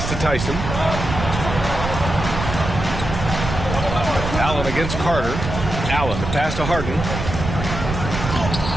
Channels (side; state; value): right; noise; rumble, 5 dB below the sound